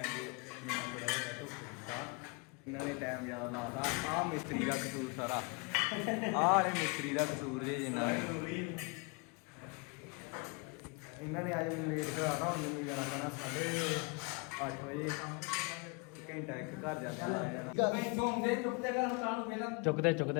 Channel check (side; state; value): right; quieter; 30.4 dB